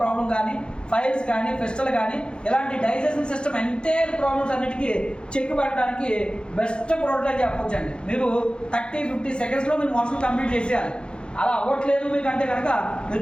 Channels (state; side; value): late; right; 0.052 ms